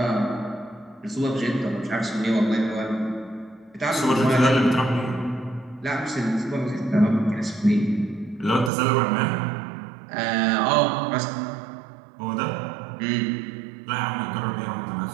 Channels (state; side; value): drops out; left; at 8.7 s